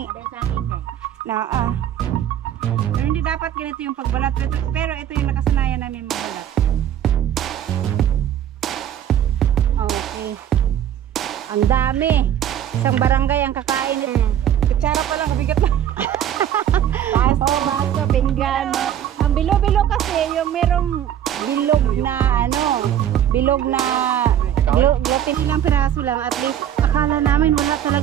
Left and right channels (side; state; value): left; quieter; 10.4 dB